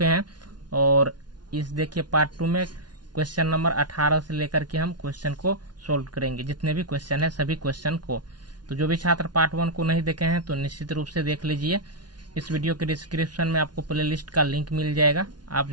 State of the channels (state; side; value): late; left; 0.70 ms